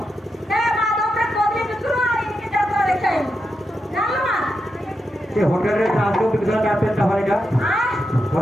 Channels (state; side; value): normal; both; correlation 0.86